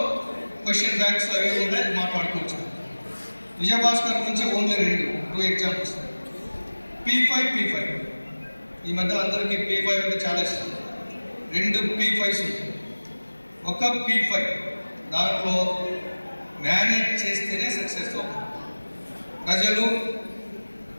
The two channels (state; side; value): inverted; both; correlation -1.00